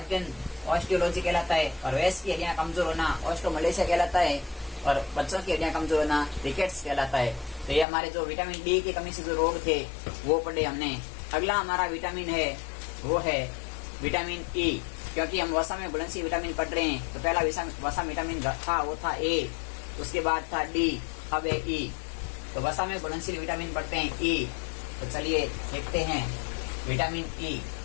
ऑस्टियोलॉजी कहलाता है, और वयस्क की हड्डियां कमजोर होना ऑस्टोमलेशिया कहलाता है, और बच्चों की हड्डियां कमजोर होना रिकेट्स कहलाता है। तो ये हमारे जो विटामिन डी की कमी से जो रोग थे वो पढ़े हमने। अगला हमारा विटामिन है वो है विटामिन ई, क्योंकि हम वसा में घुलनशील विटामिन पढ़ रहे हैं। तो पहला वसा विटामिन था वो था ए, उसके बाद था डी, अब है ई। तो वसा में घुलनशील विटामिन पढ़ते हैं ई। तो चलिए देखते हैं विटामिन ई।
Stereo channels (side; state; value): right; drops out; at 7.9 s